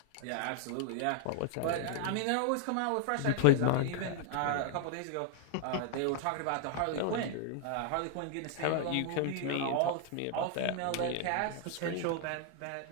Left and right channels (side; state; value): both; different; correlation 0.00